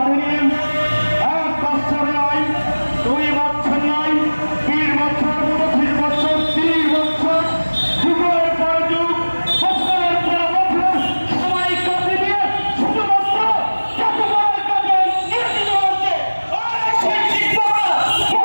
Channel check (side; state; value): both; inverted; correlation -1.00